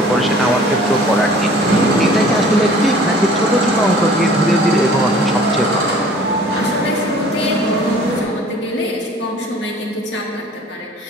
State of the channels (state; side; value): normal; both; correlation 0.50